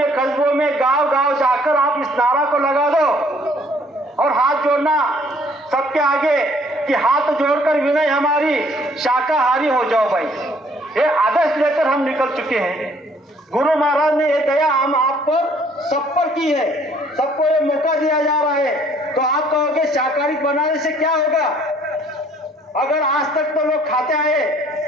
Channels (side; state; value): both; normal; correlation 0.60